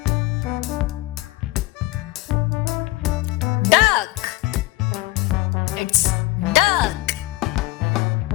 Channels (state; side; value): quieter; right; 18.6 dB